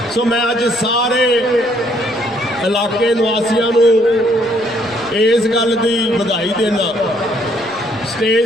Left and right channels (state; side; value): noise; right; rumble, 27 dB below the sound